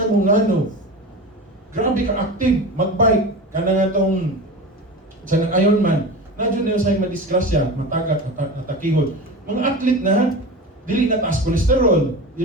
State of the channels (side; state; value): both; normal; correlation 0.29